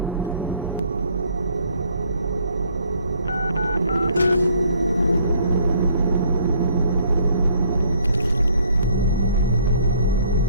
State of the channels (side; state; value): both; inverted; correlation -0.61